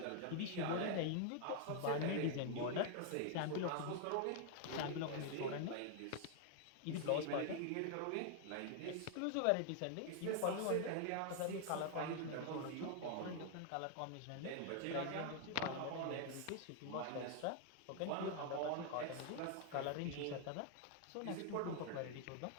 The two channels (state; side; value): different; both; correlation 0.00